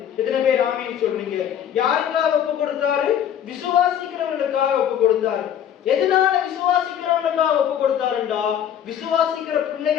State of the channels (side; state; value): right; quieter; 9.6 dB